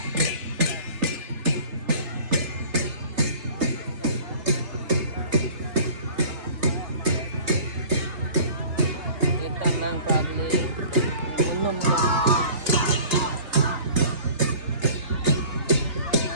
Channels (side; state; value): left; late; 3.2 ms